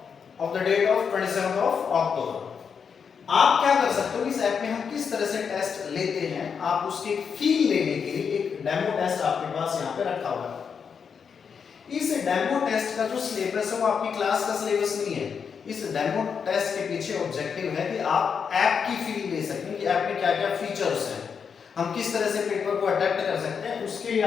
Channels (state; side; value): quieter; right; 6.5 dB